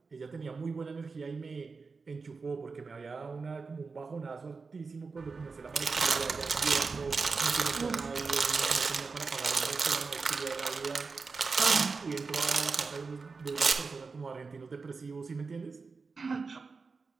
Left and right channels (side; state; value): left; quieter; 4.5 dB